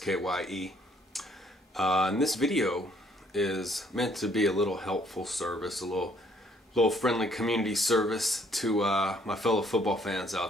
And this video is meant to be a little helpful service, a little friendly community service to my fellow football fans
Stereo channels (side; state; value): both; normal; correlation 0.64